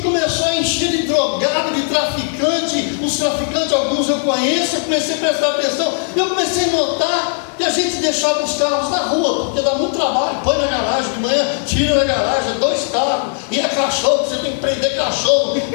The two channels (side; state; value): right; silent; 57 dB below the other